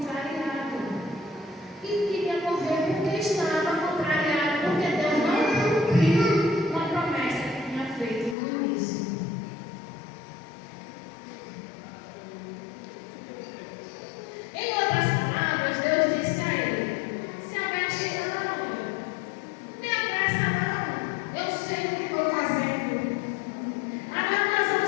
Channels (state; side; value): drops out; right; at 8.3 s